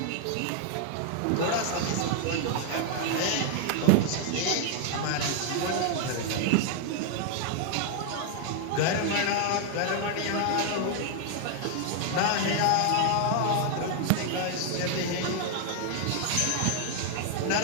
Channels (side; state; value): both; different; correlation 0.00